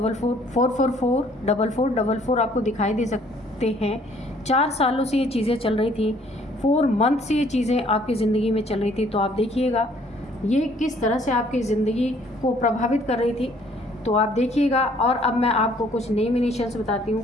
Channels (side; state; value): both; normal; correlation 0.60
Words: 4 4 4 4 4 4 4 आपको दिखाई दे सकते हैं। 4 सालों से ये चीज़ें चल रही थी, 4 मंथ से ये चीज़ें आपकी ज़िंदगी में चल रही थी। तो आप देखिएगा ये किस तरह से आपकी ज़िंदगी को प्रभावित कर रही थी, तो आप देखिएगा। और अब मैं आपको कुछ नेम इनिशियल्स बताती